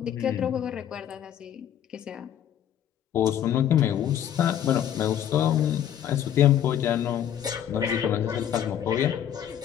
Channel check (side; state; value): right; quieter; 10.1 dB